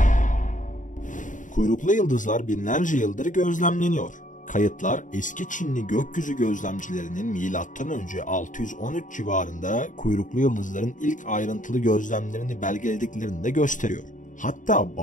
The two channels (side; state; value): right; late; 0.37 ms